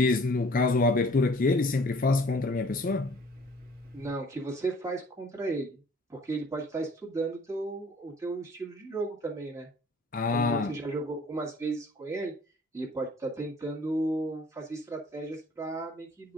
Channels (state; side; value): normal; both; correlation 0.53